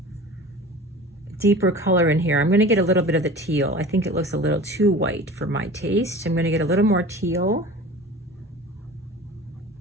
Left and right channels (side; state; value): both; normal; correlation 0.39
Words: deeper color in here. I'm going to get a little bit of the teal. I think it looks a little too white for my taste. I'm going to get a little more teal.